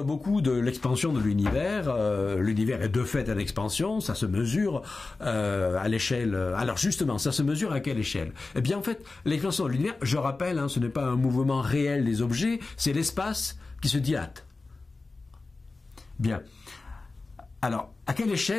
beaucoup de l'expansion de l'univers. L'univers est de fait en expansion, ça se mesure à l'échelle. Alors justement, ça se mesure à quelle échelle? Eh bien en fait, l'expansion de l'univers, je rappelle, ce n'est pas un mouvement réel des objets, c'est l'espace qui se dilate. Bien. Alors, à quelle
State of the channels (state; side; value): quieter; right; 3.6 dB